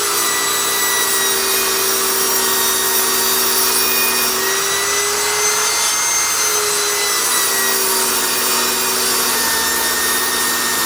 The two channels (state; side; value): identical; both; correlation 1.00